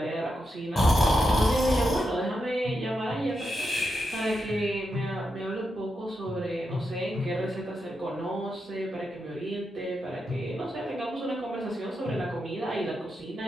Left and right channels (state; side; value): normal; both; correlation 0.86